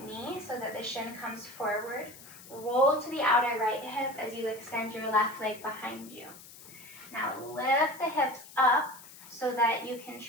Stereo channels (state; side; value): noise; left; hiss, 18 dB below the sound